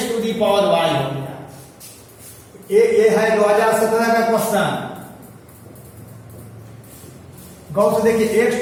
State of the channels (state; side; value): identical; both; correlation 1.00